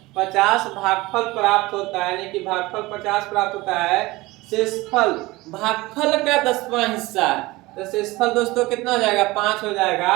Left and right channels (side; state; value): left; quieter; 20.7 dB